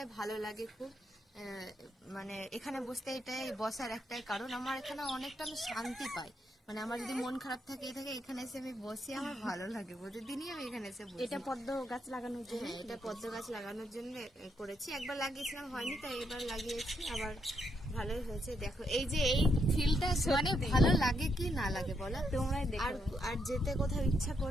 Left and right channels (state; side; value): normal; both; correlation 0.77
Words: ভালো লাগে খুব। মানে এখানে বসতে এটাই বসার একটাই কারণ, আমার এখানে অনেকটা আমি শান্তি পাই। মানে আমার যদি মন খারাপ থাকে এখানে এসে আমি বসি, আমার ভালো লাগে, প্রতিদিনই আমি এখানে এসে বসি। এটা পদ্ম গাছ লাগানোর জন্য? হ্যাঁ, এটা পদ্ম গাছ লাগানোর জন্য করেছি। একবার লাগিয়েছিলাম, হয়নি, তাই এবার লাগিয়েছি, আবার ভালোই হয়েছে। দেখো এই যে এই ফিলটা, মানে ভালো লাগে কি না লাগে বলো তোমরাই দেখো। আর আর যেতে কোথাও ইচ্ছা